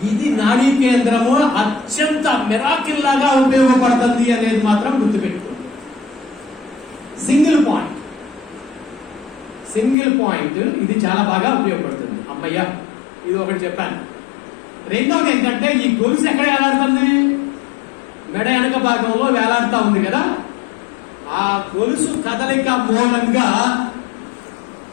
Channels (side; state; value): right; drops out; at 10.0 s